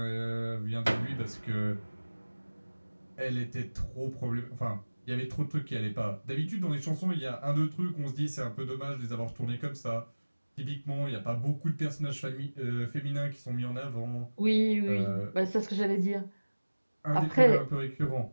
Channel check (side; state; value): both; inverted; correlation -1.00